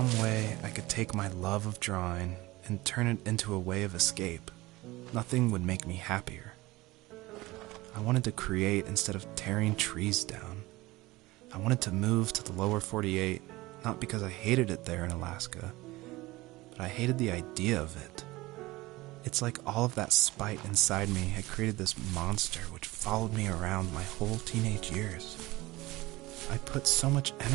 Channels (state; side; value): quieter; left; 19.9 dB